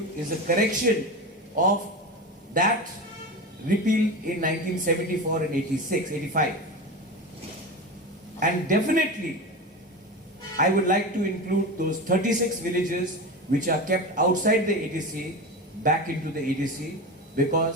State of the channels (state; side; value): normal; both; correlation 0.25